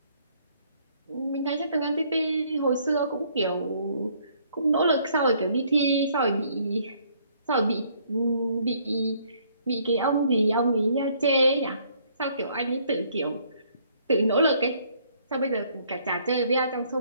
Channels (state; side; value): inverted; both; correlation -0.64